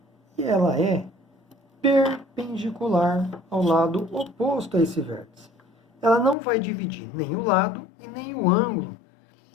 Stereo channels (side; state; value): right; drops out; at 6.4 s